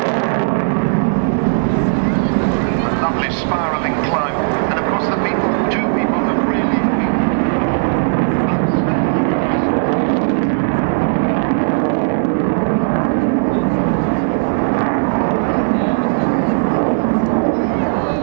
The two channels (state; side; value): silent; left; digital silence